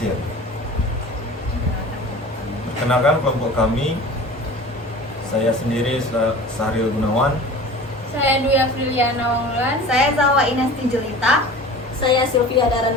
Perkenalkan kelompok kami. Saya sendiri Sahril Gunawan. Saya Dwi Afriliana Wanglulan. Saya Zawa Inesti Jelita. Saya Sylvia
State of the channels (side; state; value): both; normal; correlation 0.39